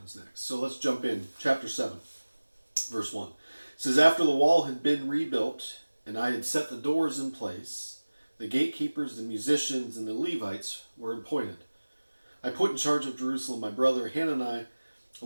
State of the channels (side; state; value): both; inverted; correlation -1.00